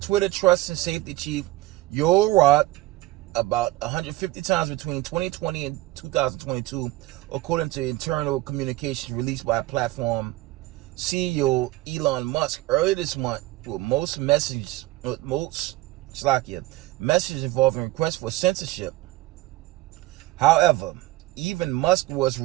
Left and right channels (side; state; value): left; quieter; 18.3 dB